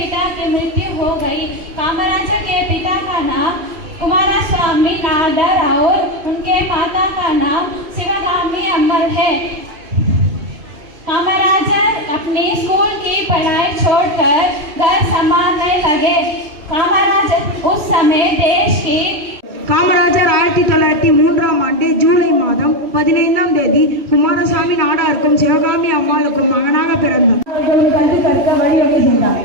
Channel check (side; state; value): left; late; 3.1 ms